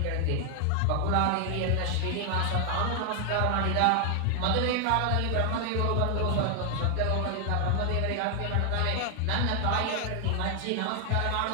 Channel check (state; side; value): different; both; correlation 0.00